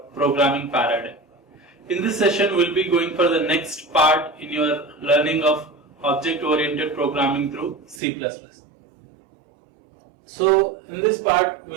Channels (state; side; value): drops out; left; at 8.0 s